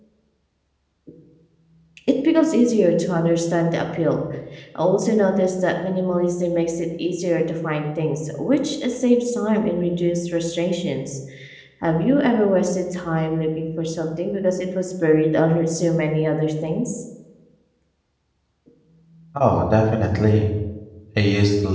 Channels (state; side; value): identical; both; correlation 1.00